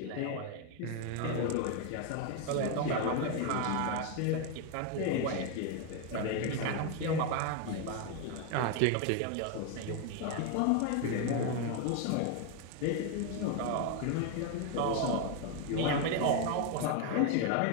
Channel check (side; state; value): both; different; correlation 0.01